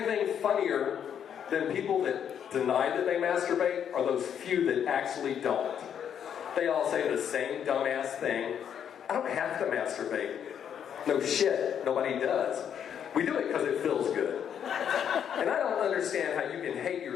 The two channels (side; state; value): right; quieter; 8.6 dB